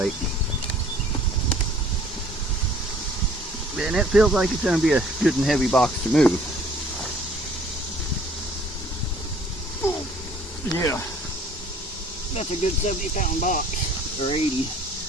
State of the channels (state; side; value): normal; both; correlation 0.55